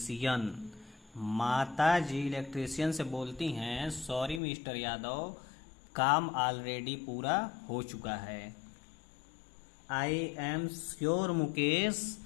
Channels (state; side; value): drops out; right; at 4.4 s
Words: माता जी इलेक्ट्रीशियन से बोलती हैं सॉरी मिस्टर यादव, काम ऑलरेडी पूरा हो चुका है। I am sure Mukesh